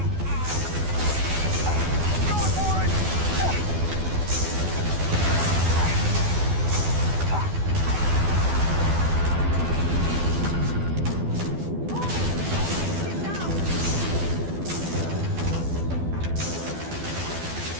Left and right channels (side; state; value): left; late; 12 ms